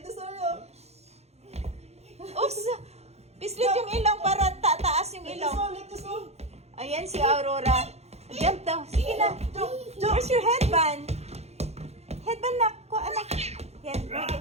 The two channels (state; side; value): late; left; 0.31 ms